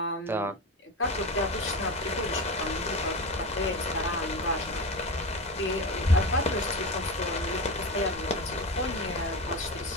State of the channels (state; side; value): normal; both; correlation 0.23